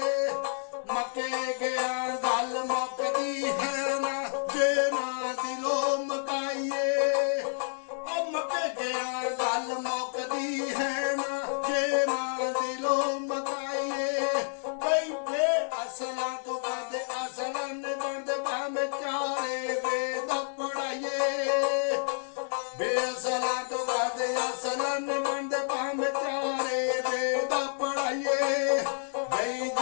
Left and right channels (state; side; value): silent; right; digital silence